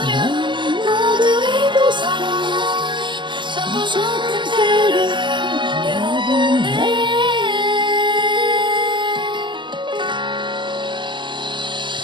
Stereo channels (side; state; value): left; late; 0.23 ms